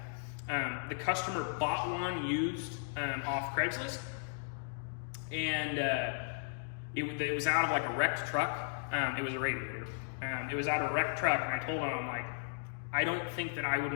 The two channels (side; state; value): right; silent; digital silence